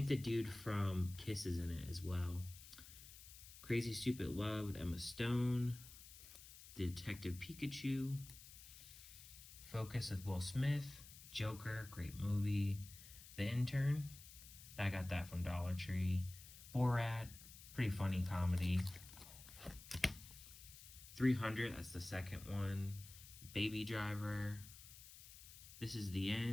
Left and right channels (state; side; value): noise; left; hiss, 16 dB below the sound